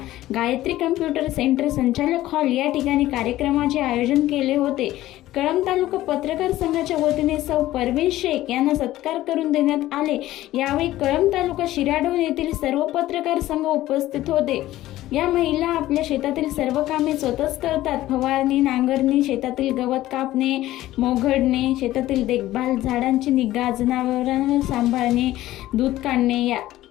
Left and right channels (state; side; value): quieter; right; 15.3 dB